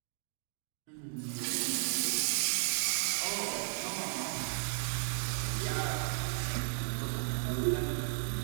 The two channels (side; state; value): left; silent; digital silence